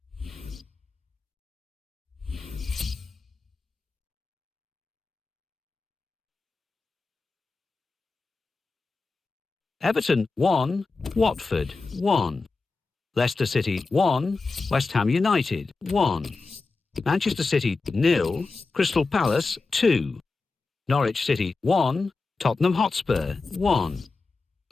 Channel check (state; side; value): quieter; right; 4.0 dB